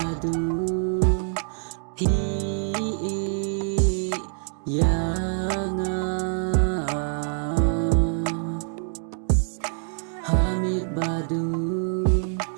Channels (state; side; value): silent; left; 62 dB below the other